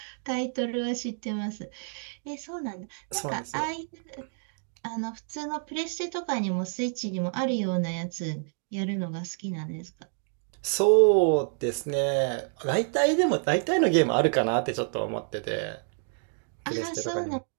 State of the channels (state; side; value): silent; left; digital silence